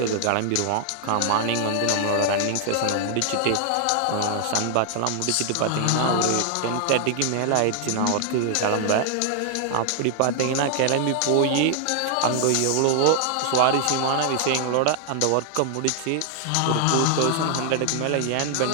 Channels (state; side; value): different; both; correlation 0.00